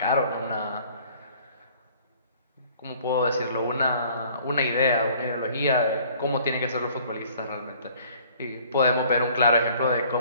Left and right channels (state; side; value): inverted; both; correlation -0.55